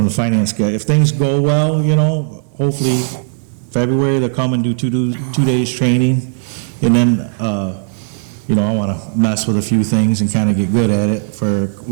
finance guy. If things go well, hopefully February they'll come and do two days training, and then I want to mess with a few things and kind of get good at it for a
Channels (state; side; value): silent; left; digital silence